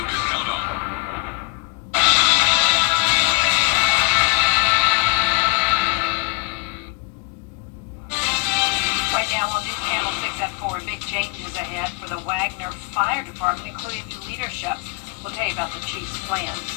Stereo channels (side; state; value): right; quieter; 27.8 dB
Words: can count on. Right now on News Channel 6 at 4, big changes ahead for the Wagner Fire Department, including new leadership. We'll tell you about the chief's plans.